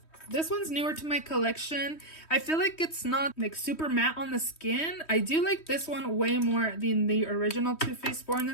This one's newer to my collection. I feel like it's not like super matte on the skin. I do like this one way more than the original Too Faced Born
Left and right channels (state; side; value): late; right; 3.1 ms